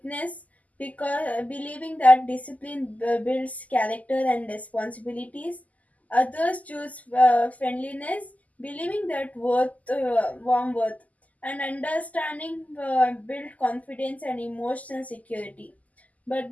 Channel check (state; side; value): late; right; 0.076 ms